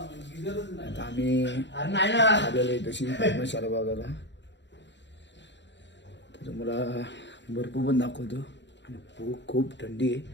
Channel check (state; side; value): late; right; 0.52 ms